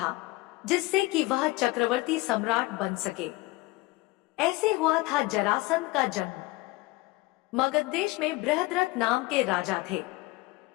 जिससे कि वह चक्रवर्ती सम्राट बन सके। ऐसे हुआ था जरासंध का जन्म। मगध देश में बृहद्रथ नाम के राजा थे।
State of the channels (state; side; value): quieter; right; 21.4 dB